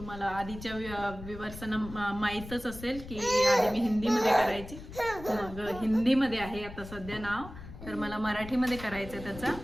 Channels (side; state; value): left; noise; rumble, 13 dB below the sound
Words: आधीच्या व्ह्यूअर्सना माहीतच असेल की आधी मी हिंदीमध्ये करायची, मग हिंदीमध्ये आहे आता सध्या नाव. तर मला मराठीमध्ये करायचं आहे